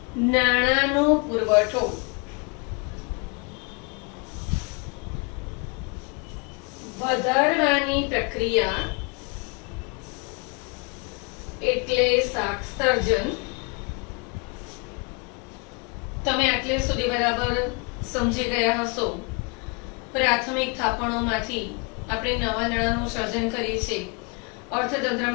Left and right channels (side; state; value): right; quieter; 32.4 dB